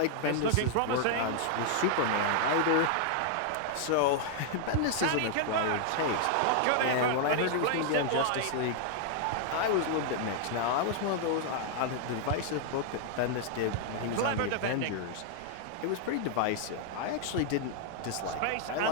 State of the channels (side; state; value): both; different; correlation 0.00